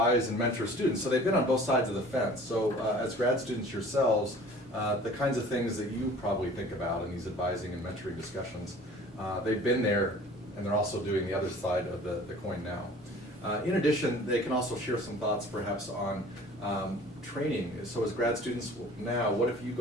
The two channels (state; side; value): normal; both; correlation 0.47